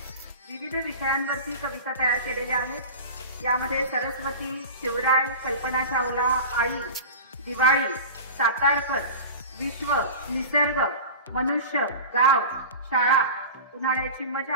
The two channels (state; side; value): inverted; both; correlation -0.32